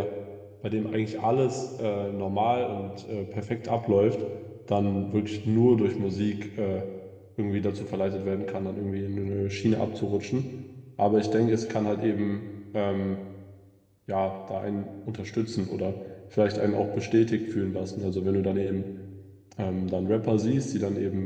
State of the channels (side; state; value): both; identical; correlation 1.00